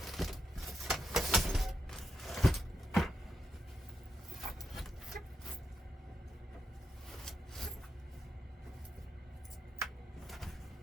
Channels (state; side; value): normal; both; correlation 0.84